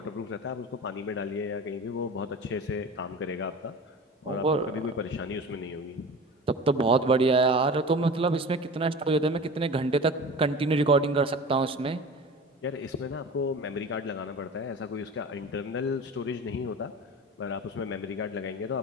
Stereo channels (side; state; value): both; normal; correlation 0.35